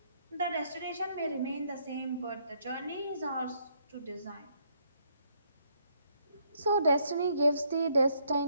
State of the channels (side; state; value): both; inverted; correlation -0.71